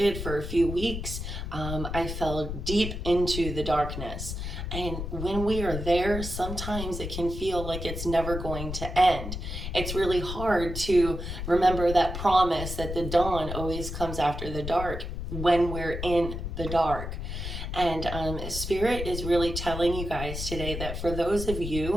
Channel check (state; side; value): noise; left; rumble, 6 dB below the sound